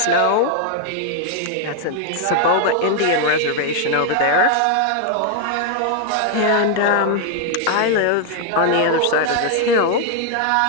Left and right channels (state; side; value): different; both; correlation 0.00